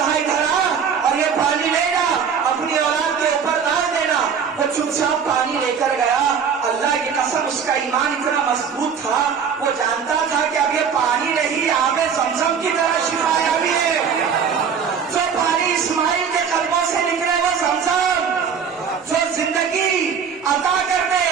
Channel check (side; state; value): left; quieter; 6.8 dB